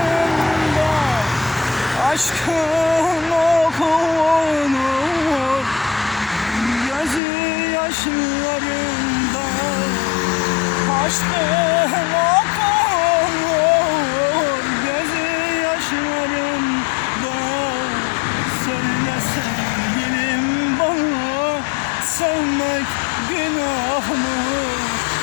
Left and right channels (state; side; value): drops out; right; at 7.2 s